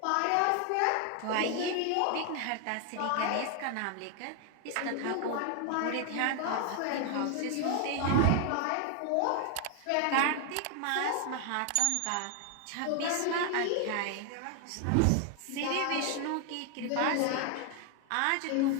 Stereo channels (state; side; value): different; both; correlation 0.00